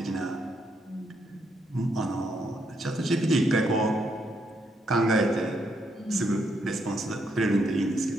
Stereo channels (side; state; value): both; normal; correlation 0.76